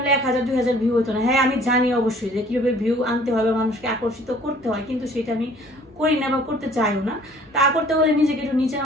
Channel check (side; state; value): both; normal; correlation 0.54